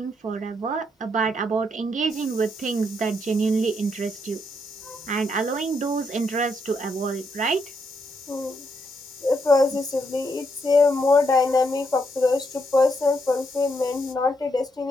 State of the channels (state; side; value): normal; both; correlation 0.77